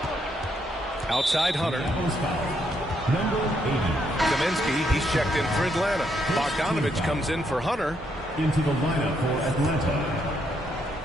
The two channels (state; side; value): normal; both; correlation 0.75